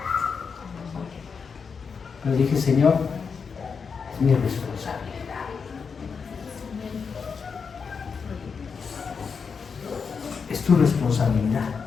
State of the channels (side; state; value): right; quieter; 5.7 dB